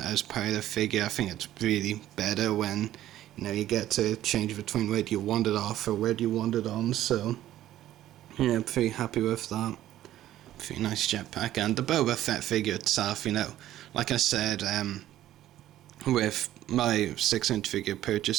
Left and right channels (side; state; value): left; quieter; 13.3 dB